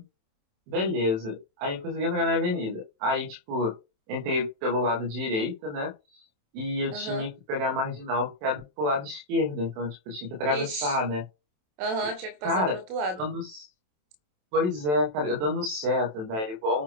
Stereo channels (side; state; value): left; late; 27 ms